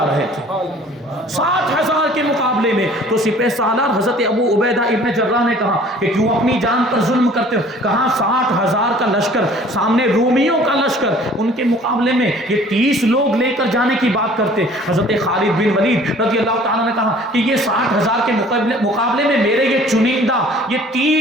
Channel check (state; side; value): normal; both; correlation 0.51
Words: رہے تھے، 60,000 کے مقابلے میں، تو سپہ سالار حضرت ابو عبیدہ ابن جراح نے کہا کہ کیوں اپنی جان پر ظلم کرتے ہو؟ کہا 60,000 کا لشکر سامنے رومیوں کا لشکر، ان کے مقابلے میں یہ 30 لوگ لے کر جانے کی بات کرتے۔ حضرت خالد بن ولید رضی اللہ تعالیٰ نے کہا کہ یہ 60,000 کے مقابلے میں میرے یہ چنندہ یہ